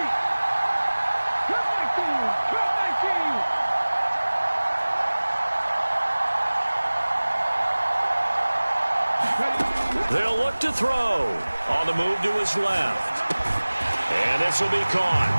They'll look to throw. On the move to his left. And this will be caught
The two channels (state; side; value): inverted; both; correlation -1.00